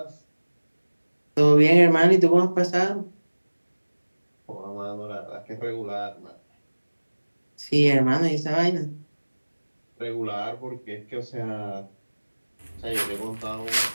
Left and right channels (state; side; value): inverted; both; correlation -1.00